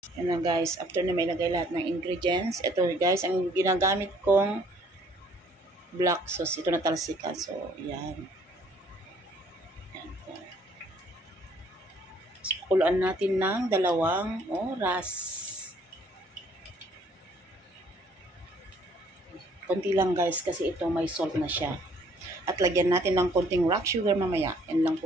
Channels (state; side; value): normal; both; correlation 0.61